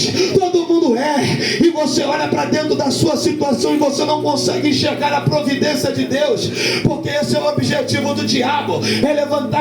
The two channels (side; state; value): both; identical; correlation 1.00